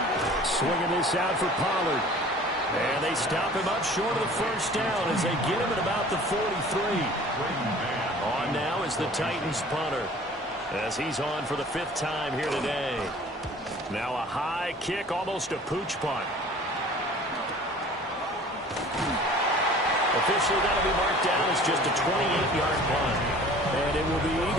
Swinging this out for Pollard. And they stop him up short of the first down as they get him at about the 43. On now is the Titans punter as he's on for the 5th time here today. Now a high kick, almost a pooch punt. Officially that'll be marked down as just a 28-yard punt. And it will be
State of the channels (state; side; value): normal; both; correlation 0.47